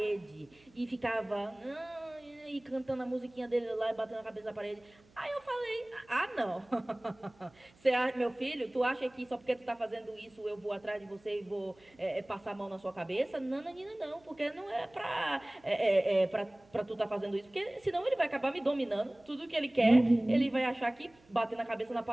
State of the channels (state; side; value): noise; right; hum, 29 dB below the sound